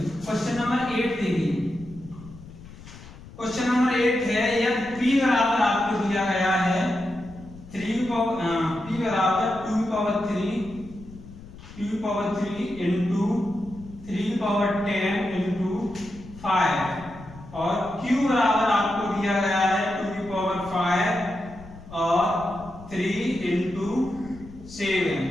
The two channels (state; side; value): noise; left; rumble, 17 dB below the sound